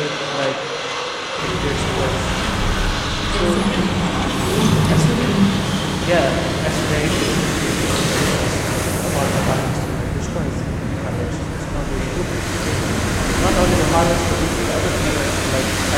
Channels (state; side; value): identical; both; correlation 1.00